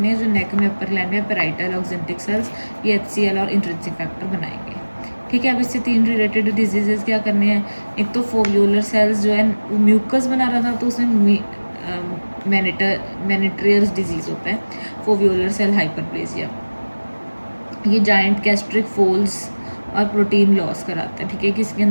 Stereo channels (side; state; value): both; inverted; correlation -1.00